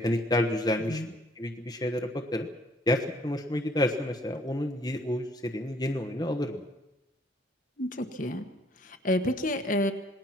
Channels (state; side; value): normal; both; correlation 0.62